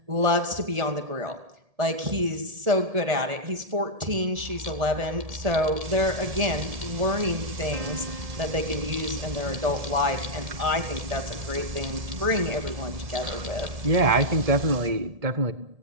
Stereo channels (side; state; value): left; late; 1.7 ms